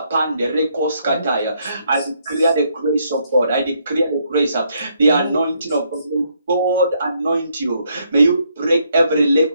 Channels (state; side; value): inverted; both; correlation -0.73